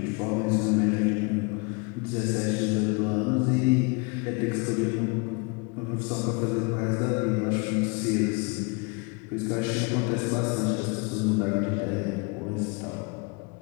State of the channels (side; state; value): right; quieter; 30.9 dB